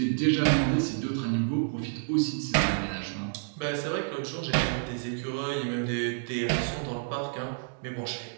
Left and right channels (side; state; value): left; silent; 58 dB below the other